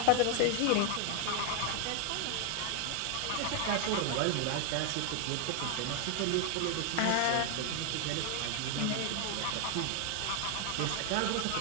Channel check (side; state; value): both; different; correlation 0.00